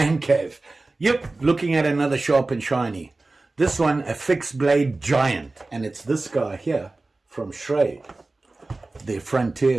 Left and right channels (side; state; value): left; quieter; 3.2 dB